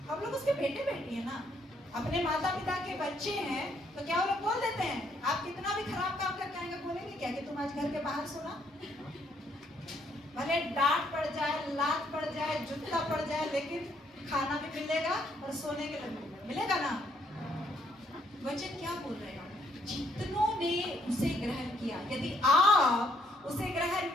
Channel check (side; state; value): both; normal; correlation 0.70